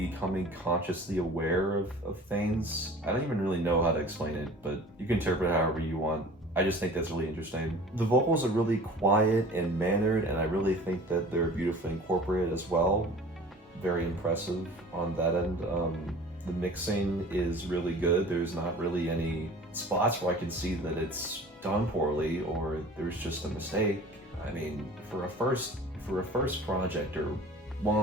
consciously aware of things. I don't even really know how to explain it, but you can interpret it however you want. I just think that's really interesting. The vocals are really quiet and mannered, and I really think that they're beautifully incorporated as well. Very impressive on that end. The mixing is really good. There's not really any spots where I can see that it's done poorly or there's just a mistake. I mean, for a first project, or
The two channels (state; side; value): normal; both; correlation 0.44